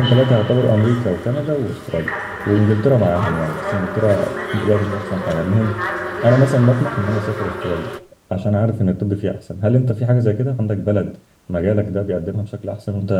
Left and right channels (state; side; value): identical; both; correlation 1.00